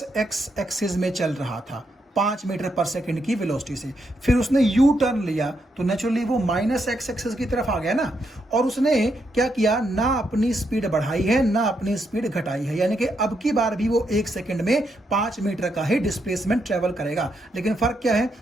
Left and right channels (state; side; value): normal; both; correlation 0.80